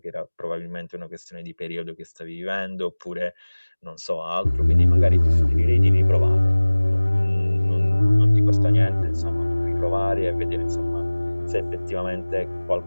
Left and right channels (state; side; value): inverted; both; correlation -1.00